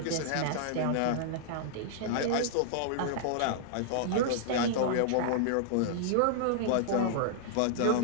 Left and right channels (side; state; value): both; different; correlation -0.01